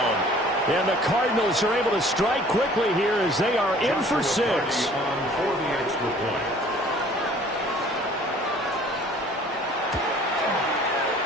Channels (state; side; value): normal; both; correlation 0.52